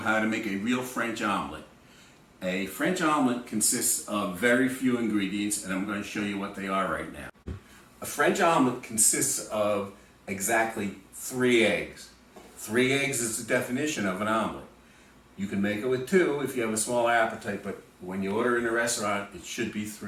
to make a real French omelet. A French omelet consists of very few ingredients, and I'm going to show you what they are right now. A French omelet consists of exactly 3 eggs. 3 eggs is the definition of an omelet. You can make it with 2 if you have a small appetite, but when you order in a restaurant, it should be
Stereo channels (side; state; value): both; identical; correlation 1.00